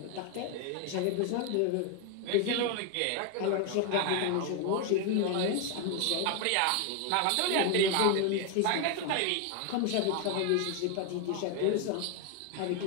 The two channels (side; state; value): both; different; correlation 0.01